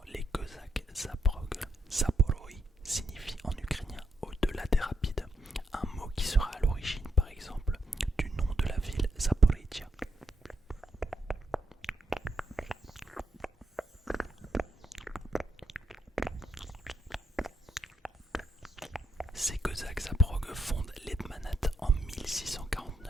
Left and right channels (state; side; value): normal; both; correlation 0.80